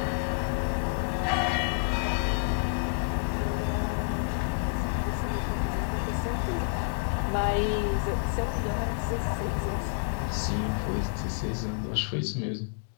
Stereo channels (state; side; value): silent; right; digital silence